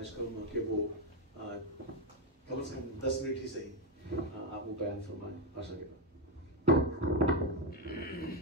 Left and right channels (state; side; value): normal; both; correlation 0.04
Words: کروں گا کہ وہ کم از کم 10 منٹ ہی صحیح آپ وہ بیان فرمائیں بھاشا کے بعد.